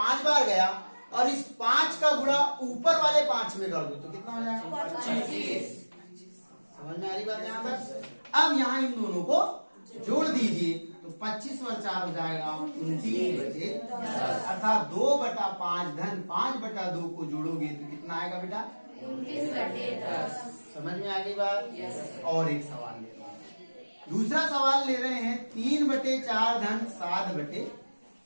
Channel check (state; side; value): inverted; both; correlation -1.00